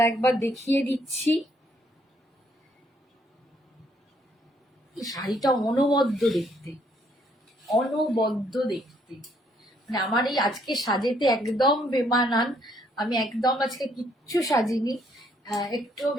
একবার দেখিয়ে দিচ্ছি। এই শাড়িটা অনবদ্য দেখতে, অনবদ্য দেখতে, মানে আমার এই আজকে সাজেতে একদম বেমানান। আমি একদম আজকে কিচ্ছু সাজিনি, একটু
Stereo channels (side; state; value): both; normal; correlation 0.69